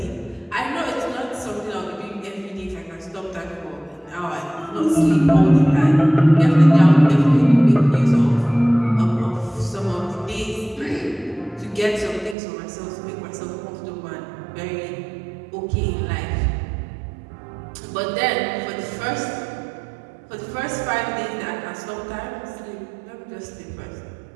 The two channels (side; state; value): left; drops out; at 12.4 s